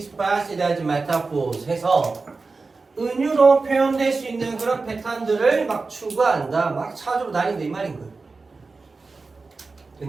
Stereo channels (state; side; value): quieter; left; 4.0 dB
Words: as metaphors 해서 은유로 표현될 수 있는 그런 패턴들을 막 추구한다, 막 찾으러 다닌다 이 말인 거예요.